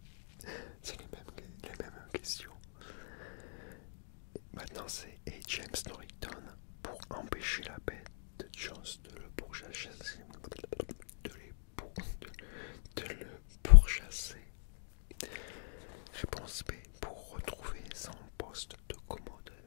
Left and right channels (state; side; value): silent; right; digital silence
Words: C'est les mêmes questions. Maintenant c'est et James Norrington pour empêcher la bête de Jones de le pourchasser. De le pourchasser. Réponse B. Pour retrouver son poste de